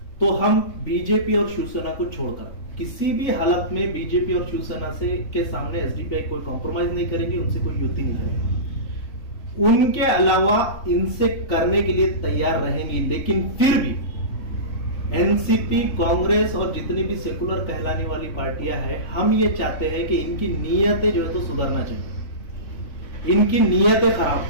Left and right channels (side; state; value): right; late; 3.5 ms